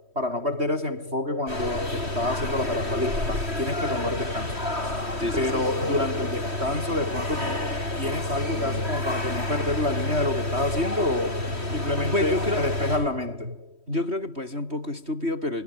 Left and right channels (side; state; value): left; late; 3.1 ms